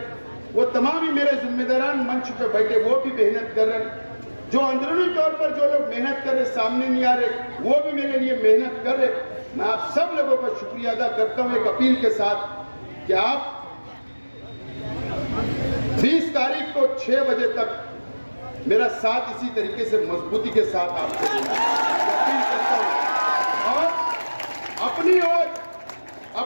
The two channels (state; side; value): inverted; both; correlation -1.00